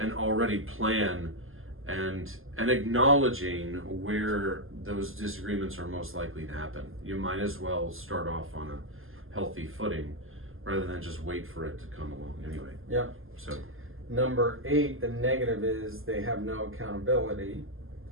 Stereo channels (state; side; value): late; left; 0.60 ms